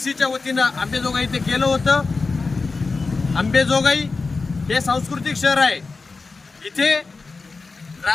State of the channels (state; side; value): quieter; right; 4.1 dB